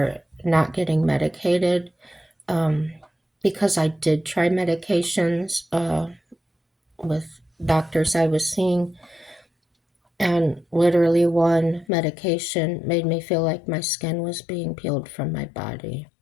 not getting medicated, because I did try medications with doctors I was seeing, and literally one medication made me feel like my skin was being peeled from my body.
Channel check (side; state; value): right; drops out; at 11.9 s